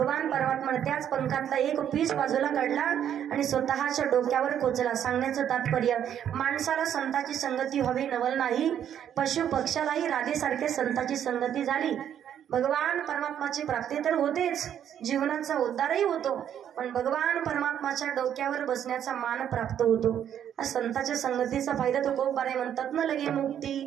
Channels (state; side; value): quieter; left; 9.7 dB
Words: परमात्माने त्याच पंखातला एक पीस बाजूला काढला आणि स्वतःच्या डोक्यावर कोचला. सांगण्याचं तात्पर्य, माणसाला संताची संगती व्हावी नवल नाही, पशु पक्षालाही राधेसारखे संताची संगती झाली. भगवान परमात्माची प्राप्ती तर होतेच, जीवनाचा उद्धारही होतो, पण भगवान परमात्माच्या डोक्यावर बसण्याचा मान प्राप्त होतो. संताच्या संगतीचा फायदा तो खूप बारे म्हणतात ना, लगे